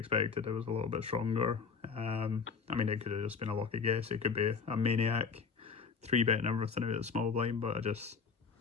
it was a little bit stronger. I mean, it could have just been a lucky guess. It could be a maniac 3-betting everything out of the small blind, but I just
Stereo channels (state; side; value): quieter; right; 5.6 dB